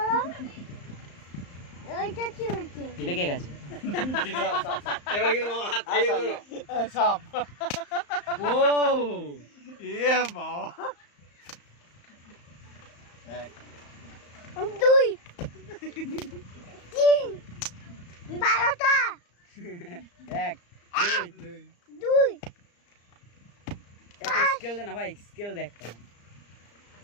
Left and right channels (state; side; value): late; right; 34 ms